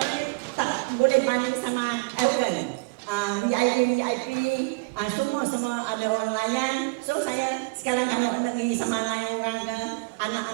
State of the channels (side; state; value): left; quieter; 26.4 dB